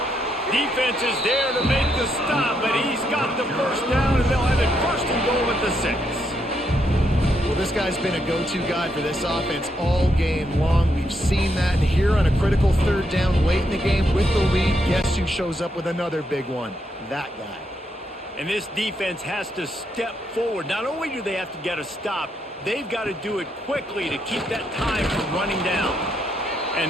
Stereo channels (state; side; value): normal; both; correlation 0.78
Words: Defense is there to make the stop, but he's got the 1st down, and they'll have it 1st and goal at the 6. Well, this guy's been a go-to guy for this offense all game long. We've seen that, and here on a critical 3rd down late in the game with the lead, guess who shows up with another big one? That guy. And this defense has to step forward. Not only do they have to get a stop, they've got to do it quickly to keep that time from running down.